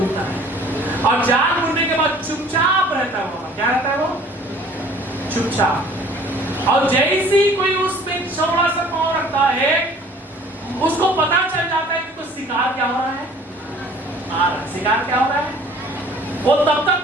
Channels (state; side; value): normal; both; correlation 0.52